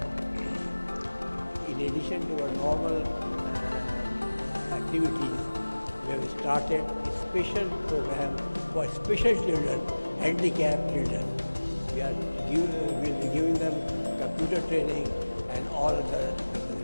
in addition to our normal activities, we have started a special program for special children, handicapped children. We'll be giving them computer training and all other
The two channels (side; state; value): both; inverted; correlation -1.00